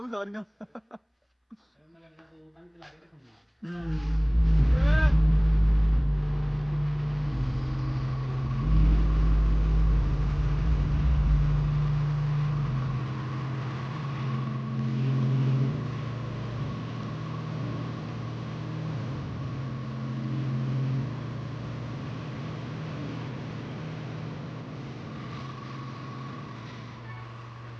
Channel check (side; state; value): both; identical; correlation 1.00